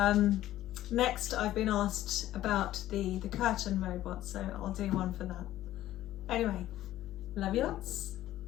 Next, I've been asked about the curtain robot, so I'll do one for that. Anyway, love you lots.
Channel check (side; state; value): right; quieter; 14.0 dB